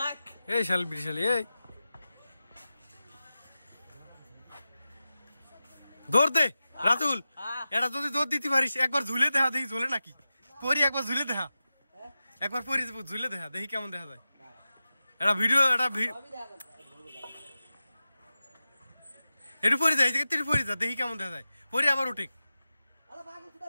এই শাল বিশাল এই দৌড় দে রাতুল, এটা যদি দৌড় দিতে পারিস একবার ঝুলে দেখা দেখি ঝোলে নাকি পরি, একবার ঝুলে দেখা একবার পরি ঝুলে দেখা দেখি কেমন দেখা যায়। এটা ভিডিও এটা একটু পরে যায় একটু পরে যা দেখি কেমন দেখা যায়, পরে আবার উঠে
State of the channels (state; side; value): inverted; both; correlation -0.94